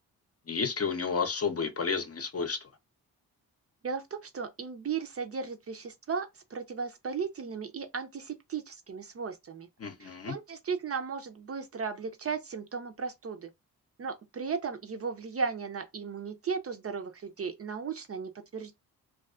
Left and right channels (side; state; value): both; normal; correlation -0.16